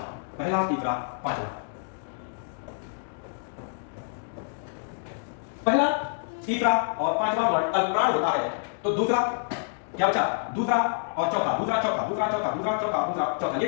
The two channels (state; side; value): silent; right; digital silence